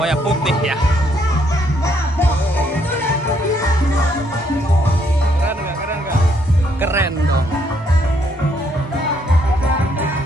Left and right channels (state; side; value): normal; both; correlation 0.71